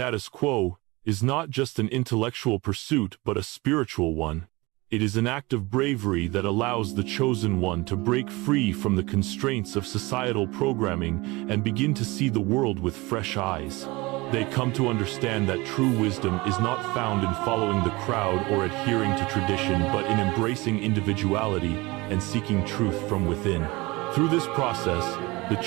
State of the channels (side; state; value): left; quieter; 23.1 dB